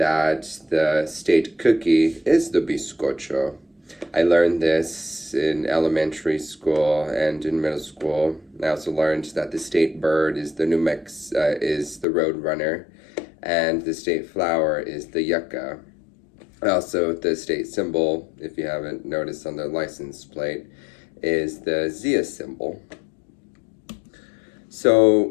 the state cookie is the bizcocho. I learned this in elementary school and in middle school. I also learned that the state bird is is the roadrunner, and the state flower is the yucca. Also, the state symbol, if you haven't noticed on the license plate, is the Zia symbol.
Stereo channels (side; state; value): right; drops out; at 12.1 s